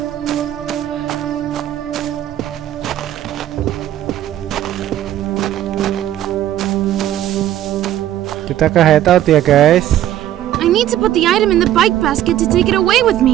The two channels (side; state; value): left; quieter; 12.5 dB